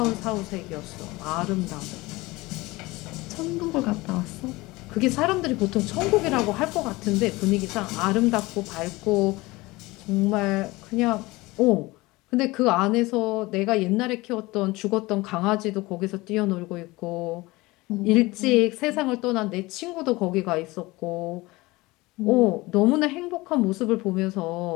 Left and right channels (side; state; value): right; quieter; 21.4 dB